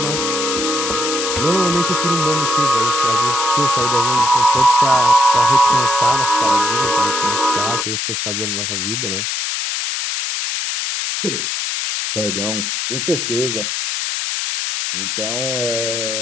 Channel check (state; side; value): noise; left; hiss, 2 dB below the sound